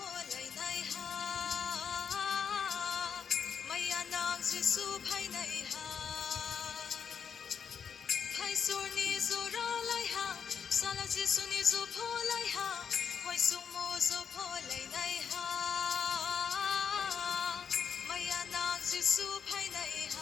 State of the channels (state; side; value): quieter; right; 7.0 dB